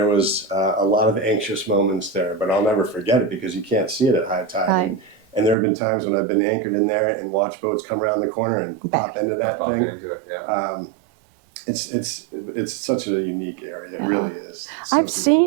was a lot of anxious moments there, but I'll never forget it because you can't see it at high tide. Right. And there have been times when I've been anchored in there and watched boats come around the corner and pop into that Popping thing. into it. Yeah. It's such a unique area. It really is. It's so I've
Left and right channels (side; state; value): left; drops out; at 5.6 s